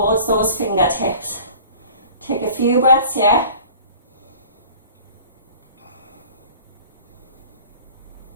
those fingertips. Take a few breaths here.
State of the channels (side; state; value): both; inverted; correlation -0.45